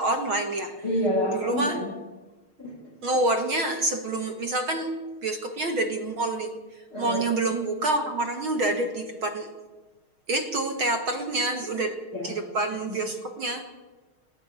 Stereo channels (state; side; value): late; left; 6.5 ms